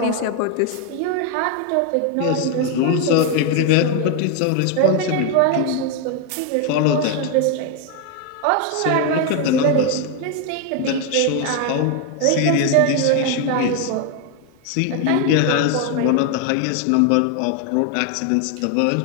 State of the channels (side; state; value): both; different; correlation 0.01